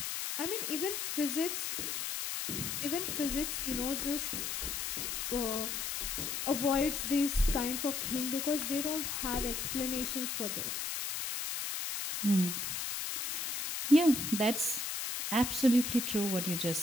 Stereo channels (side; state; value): left; noise; hiss, 2 dB below the sound